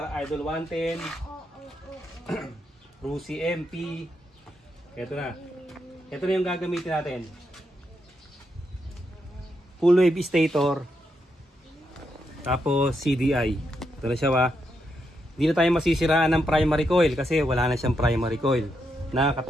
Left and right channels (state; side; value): normal; both; correlation 0.82